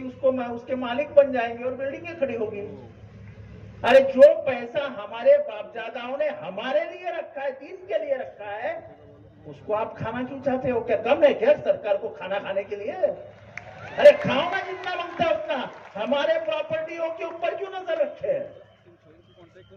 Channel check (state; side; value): identical; both; correlation 1.00